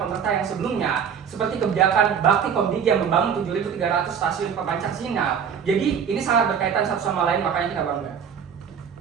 yang sebelumnya, seperti kebijakan Bakti Komdigi yang membangun 7.300 stasiun pemancar sinyal. Jadi ini sangat berkaitan satu sama lain, makanya kita bangga.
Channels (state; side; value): quieter; left; 7.4 dB